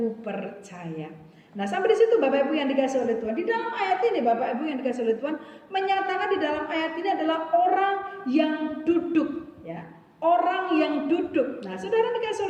percaya. Nah sampai di situ Bapak Ibu yang dikasihi oleh Tuhan, di dalam ayat ini Bapak Ibu yang dikasihi oleh Tuhan menyatakan di dalam ayat ini adalah orang yang duduk ya, orang yang duduk. Nah, saudara dikasih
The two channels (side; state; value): both; identical; correlation 1.00